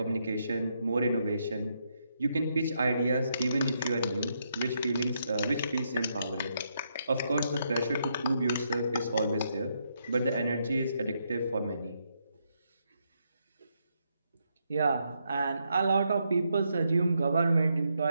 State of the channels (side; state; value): both; inverted; correlation -0.78